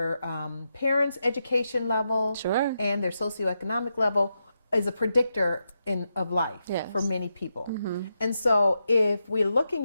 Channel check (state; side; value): inverted; both; correlation -0.86